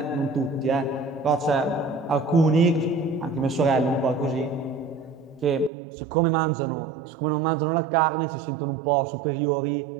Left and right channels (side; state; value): left; drops out; at 5.7 s